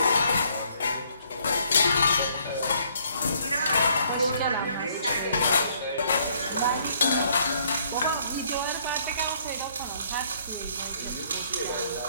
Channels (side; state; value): both; inverted; correlation -0.65